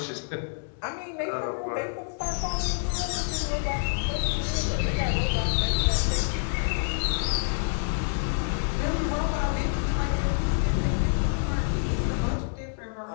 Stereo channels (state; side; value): silent; right; digital silence